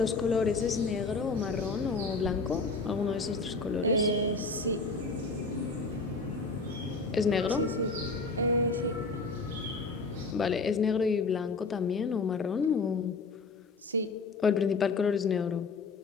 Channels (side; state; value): right; quieter; 3.9 dB